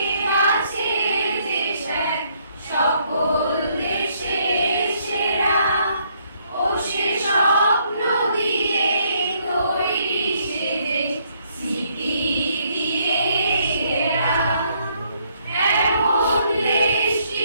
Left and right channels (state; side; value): inverted; both; correlation -0.70